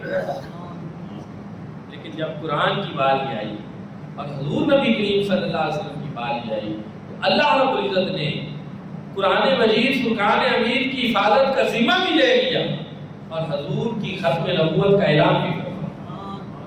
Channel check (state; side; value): identical; both; correlation 1.00